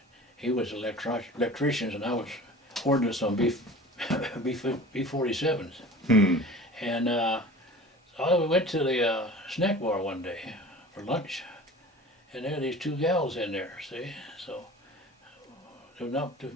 He was an electrician, and I was ordnance on B-47s. Hmm. And we went to the snack bar one day for lunch, and there were these 2 gals in there, see? So there were not too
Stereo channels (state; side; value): normal; both; correlation 0.40